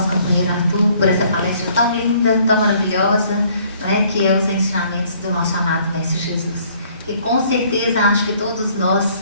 companheiro Arthur por essa palestra tão linda, tão maravilhosa, não é? Que é os ensinamentos do nosso amado Mestre Jesus. E com certeza acho que todos nós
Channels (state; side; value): inverted; both; correlation -0.61